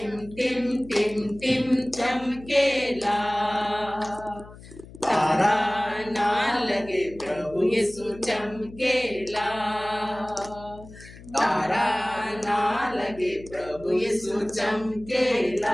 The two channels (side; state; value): left; noise; hum, 18 dB below the sound